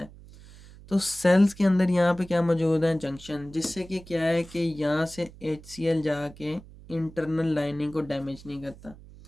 है। तो सेल्स के अंदर यहाँ पे क्या मौजूद है, जंक्शन, जिससे कि क्या है कि यहाँ से HCl जाके इंटरनल लाइनिंग को डैमेज नहीं करता।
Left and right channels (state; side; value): noise; right; hum, 20 dB below the sound